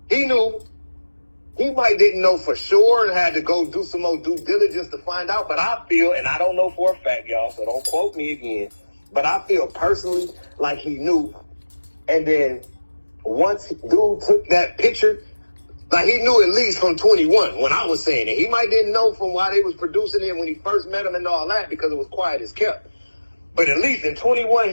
He knew. He might didn't know for sure and had to go do some more due diligence to find out. But I feel, and I don't know for a fact, y'all, so don't quote me again, but I feel personally like he knew. And then once dude took that picture Like, he knew at least from 21 when I was saying it. He might didn't know from why they was producing it when he first met him and all that because it was quiet as kept. But at least in 21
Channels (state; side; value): inverted; both; correlation -1.00